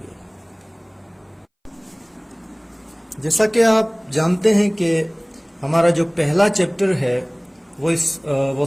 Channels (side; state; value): both; identical; correlation 1.00